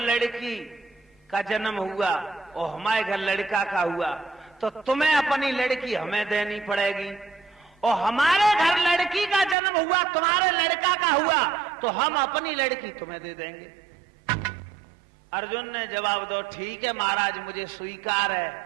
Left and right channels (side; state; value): left; drops out; at 9.6 s